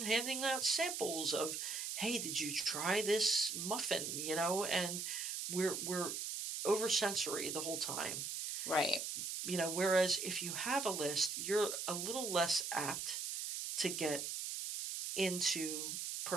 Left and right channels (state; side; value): noise; right; hiss, 3 dB below the sound